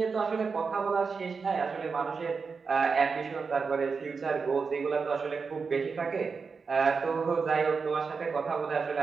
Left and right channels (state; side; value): quieter; left; 5.0 dB